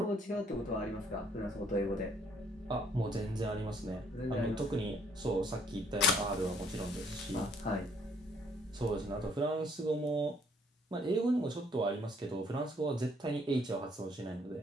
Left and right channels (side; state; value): both; normal; correlation 0.65